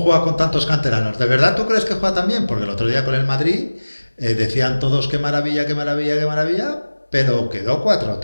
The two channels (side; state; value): both; inverted; correlation -1.00